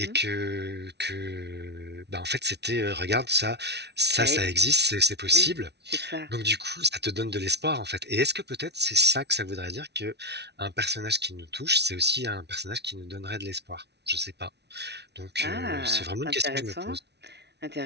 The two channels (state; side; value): late; left; 0.50 ms